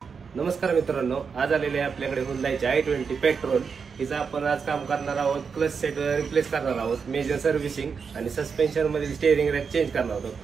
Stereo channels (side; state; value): left; quieter; 5.8 dB